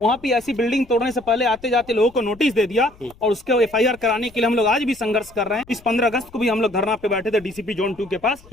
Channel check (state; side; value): noise; left; rumble, 24 dB below the sound